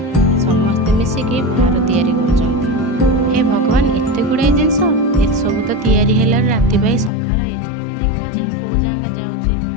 समस्ते मिसिकी भार तैयारी कर हे भगवान एत गुड़ाई जिन सब तो तैयारी है राति पाई सका देखा जाओ कौ जागा जाऊँगी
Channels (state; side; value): drops out; right; at 7.1 s